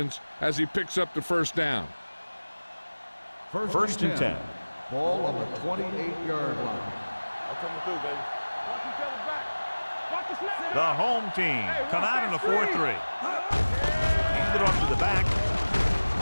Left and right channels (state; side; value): inverted; both; correlation -1.00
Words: as he picks up the first down. First and 10. Ball on the 28-yard line. I'm coming through, baby. Watch each other back. Watch the snap. The home team come out in a 4-3. Hand it off to the back.